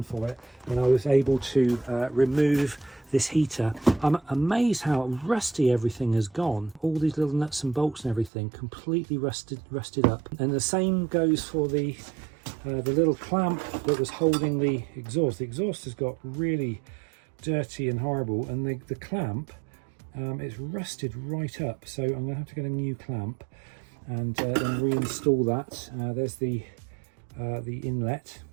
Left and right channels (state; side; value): drops out; left; at 8.3 s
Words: for it, and I was able to remove this heater. I'm amazed how rusty everything has gone. All these little nuts and bolts and everything completely rusted up. And the same goes for the little clamp that was holding the exhaust. The exhaust has got really dirty and horrible, and the clamp, it's rusted right up, so I'm gonna have to get a new clamp. and then reinstall that. There's the inlet.